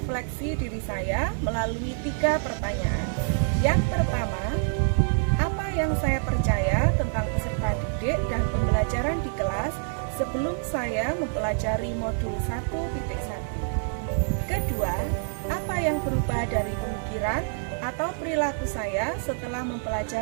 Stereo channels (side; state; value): left; silent; 60 dB below the other